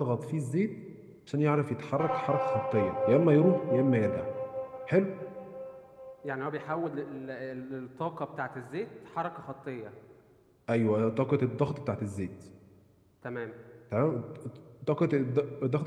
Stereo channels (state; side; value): identical; both; correlation 1.00